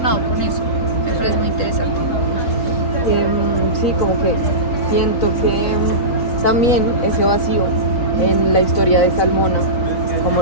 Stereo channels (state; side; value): late; right; 4.0 ms